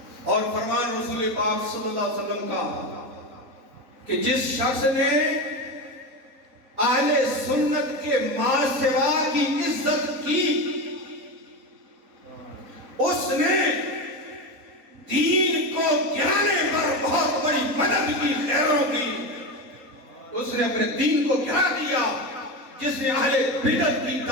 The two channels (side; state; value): left; late; 3.8 ms